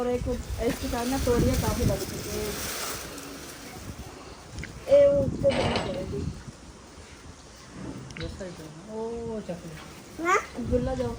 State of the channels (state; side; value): identical; both; correlation 1.00